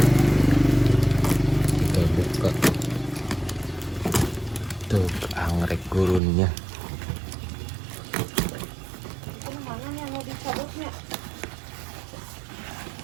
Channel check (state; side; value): drops out; left; at 6.2 s